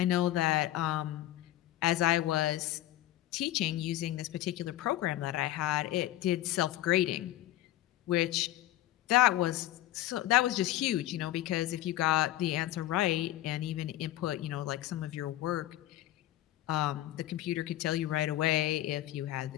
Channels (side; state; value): right; quieter; 14.6 dB